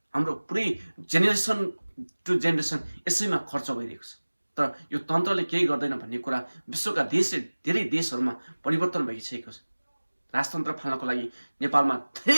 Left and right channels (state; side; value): inverted; both; correlation -1.00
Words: हाम्रो पुरै जेनेरेसन टु जेनेरेसन यसैमा खर्च भइरहेको छ। तर यो तन्त्रले केही गर्दैन भन्ने कुरा विश्वका धेरै देशहरूमा परिवर्तन भइसकेको छ। राजतन्त्र फाल्नको लागि नेपालमा